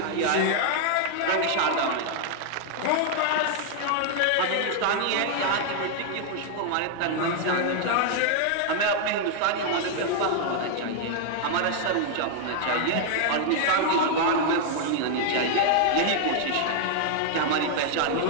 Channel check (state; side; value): different; both; correlation -0.01